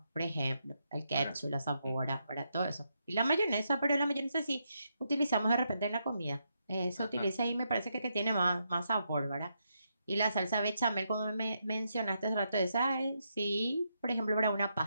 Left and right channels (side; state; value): both; inverted; correlation -0.81